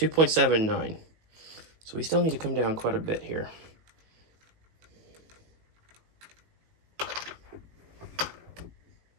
So we still need to come down quite a bit here.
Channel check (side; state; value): left; late; 18 ms